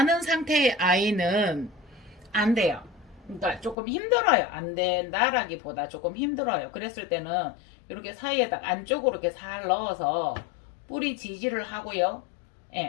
상태의 아이는 안 돼요. 그러니까 조금 힘들어요. 안 된다라기보다 조금 힘들어요. 그랬을 때는 이렇게 사이에다 안쪽으로 이렇게 살 넣어서 뿌리 지지를 하고요.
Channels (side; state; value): right; drops out; at 3.8 s